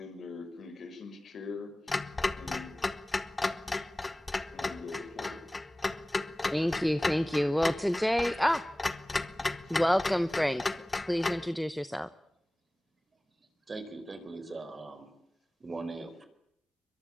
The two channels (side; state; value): both; normal; correlation 0.98